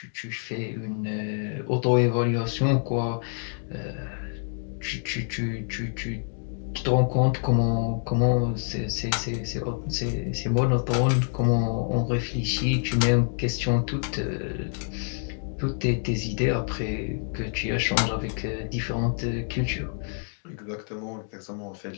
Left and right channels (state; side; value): silent; right; 56 dB below the other